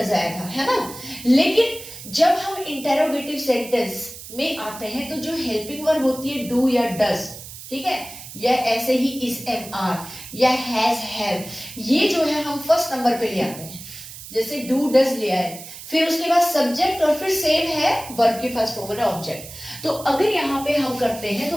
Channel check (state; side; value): noise; right; hiss, 14 dB below the sound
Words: आया था, है ना। लेकिन जब हम इंटेरोगेटिव सेंटेंस में आते हैं तो जो हेल्पिंग वर्ब होती है डू या डज, ठीक है, या ऐसे ही इज एम आर या हैज हैव, ये जो है हम फर्स्ट नंबर पे ले आते हैं। जैसे डू डज लिया है, फिर उसके बाद सब्जेक्ट और फिर सेम है वर्ब की फर्स्ट फॉर्म है ऑब्जेक्ट। तो अगर यहाँ पे हम करते हैं